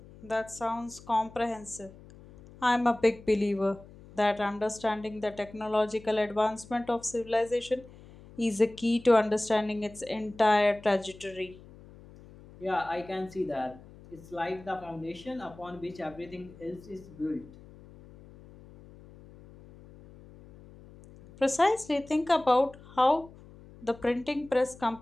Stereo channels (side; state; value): left; noise; hum, 20 dB below the sound